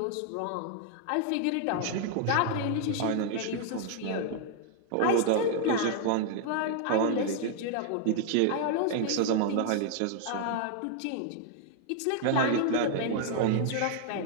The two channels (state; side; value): different; both; correlation 0.00